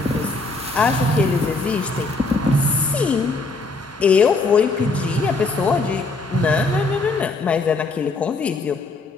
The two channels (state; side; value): quieter; right; 3.5 dB